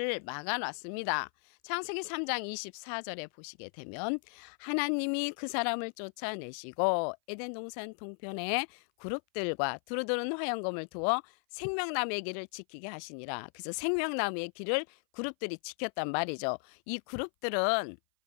막아놨습니다. 창세기 3장 24절에 보시게 되면 하나님이 그 사람을 쫓아내시고 에덴 동산 동편에 그룹들과 두루두른 화영검을 두어 생명나무의 길을 지키게 하시니라. 그래서 생명나무의 길을 그룹들이 지켰단 말이죠. 이 그룹들은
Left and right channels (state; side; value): silent; right; 54 dB below the other